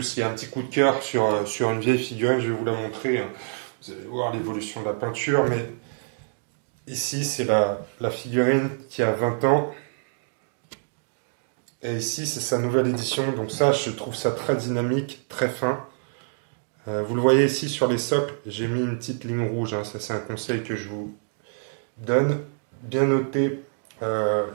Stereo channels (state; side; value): silent; left; digital silence